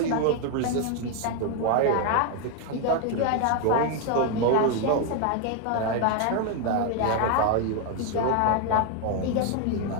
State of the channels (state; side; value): different; both; correlation 0.01